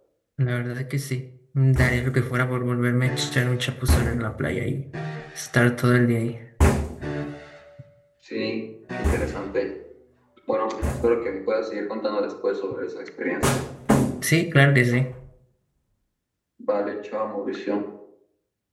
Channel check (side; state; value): both; identical; correlation 1.00